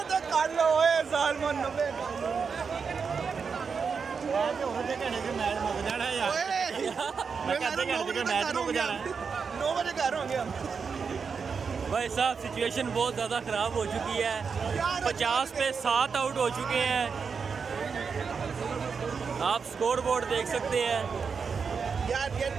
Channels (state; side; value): quieter; left; 5.7 dB